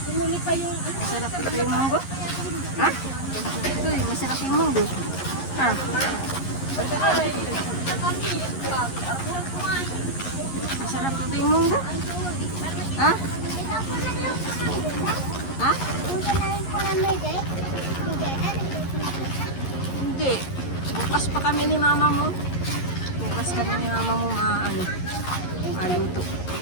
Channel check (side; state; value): right; late; 11 ms